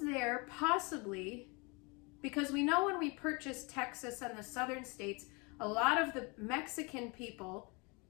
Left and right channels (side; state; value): right; quieter; 29.4 dB